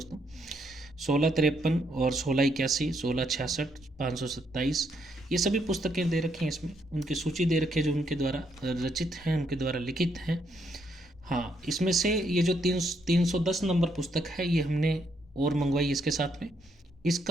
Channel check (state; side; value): normal; both; correlation 0.74